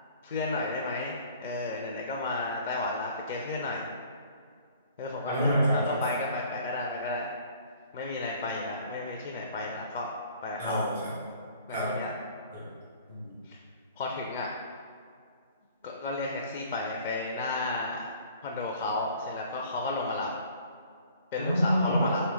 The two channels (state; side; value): inverted; both; correlation -0.53